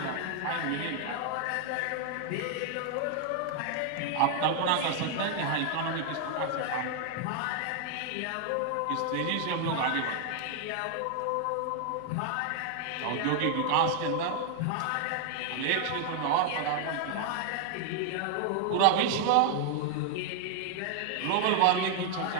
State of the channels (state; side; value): different; both; correlation 0.00